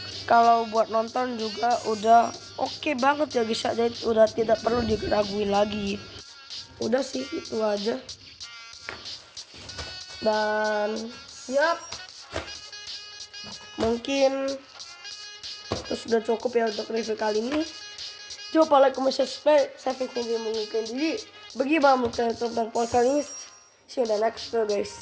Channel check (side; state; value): both; identical; correlation 1.00